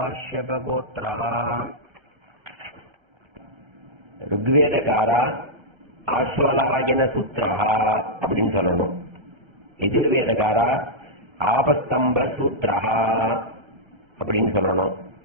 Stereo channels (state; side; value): late; left; 1.3 ms